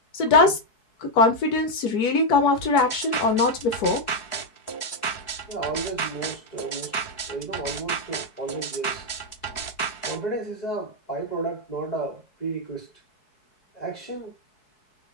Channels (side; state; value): right; late; 4.7 ms